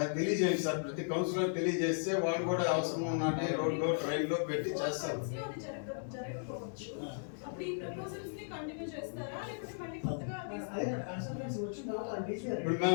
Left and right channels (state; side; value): silent; right; digital silence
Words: తెలియజేయండి సార్. ప్రతి కౌన్సిలర్ తెలియజేస్తే వాళ్ళు కూడా అవసరం ఉన్నట్టు రోడ్లో ట్రైన్లో పెట్టి చేస్తారు. ఇప్పుడు